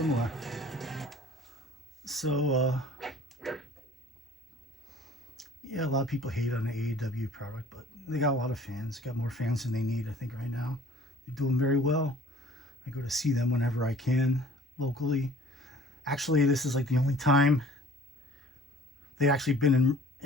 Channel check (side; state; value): both; normal; correlation 0.50